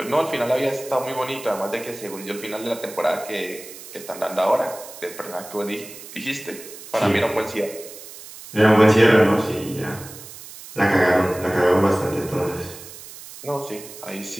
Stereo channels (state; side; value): noise; right; hiss, 15 dB below the sound